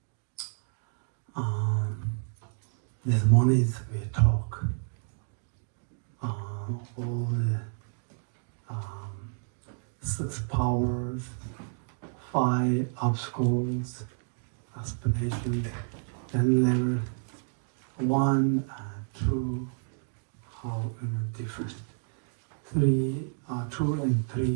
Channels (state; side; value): silent; left; digital silence